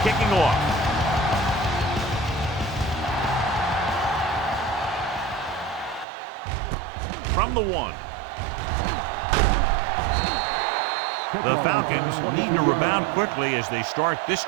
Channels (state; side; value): drops out; left; at 6.1 s